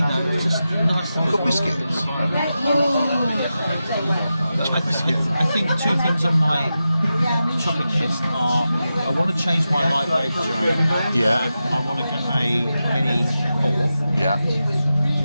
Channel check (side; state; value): both; inverted; correlation -0.91